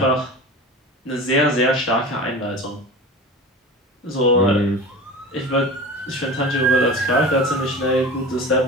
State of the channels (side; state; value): both; normal; correlation 0.34